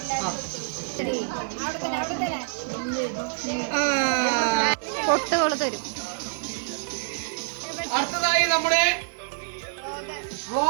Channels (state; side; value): silent; left; 56 dB below the other